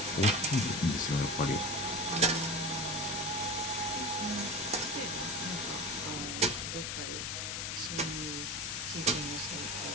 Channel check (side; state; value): left; noise; hiss, 2 dB below the sound